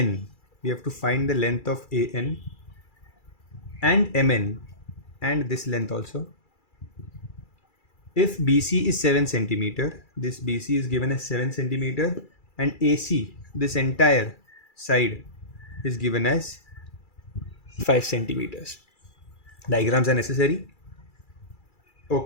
We have to find the length of AN and Mn and this length also. If BC is 7 centimeter, this BC is given as 7 centimeter and AC, this entire side, is given as 5 centimeters. Diagrams are necessary.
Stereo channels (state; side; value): late; right; 2.3 ms